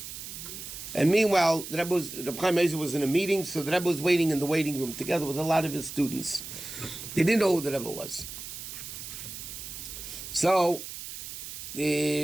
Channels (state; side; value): noise; right; hiss, 10 dB below the sound